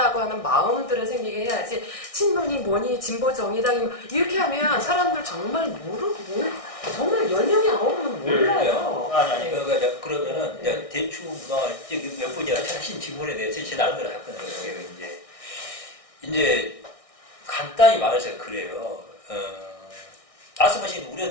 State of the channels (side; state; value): right; late; 1.6 ms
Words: 하는 마음들을 생기게 해야지 친노니 뭐니 진보 정의당이 이렇게 하면 사람들 정말 정말 10명이 9명은 몰라요. 아니 그러면은 대충 몇 분이 하신 질문에 대해서 제 나름대로 답변을 할게요. 이제 간단히 말해서 그래요. 말씀하신